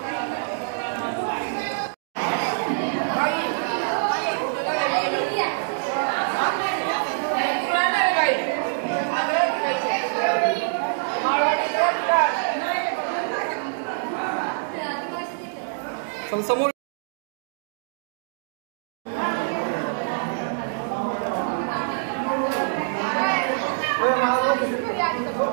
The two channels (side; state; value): left; silent; digital silence